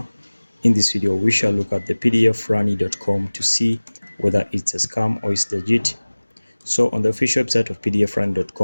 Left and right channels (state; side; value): inverted; both; correlation -1.00